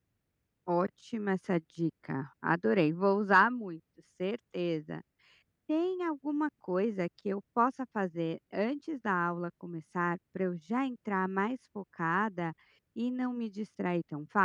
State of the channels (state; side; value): identical; both; correlation 1.00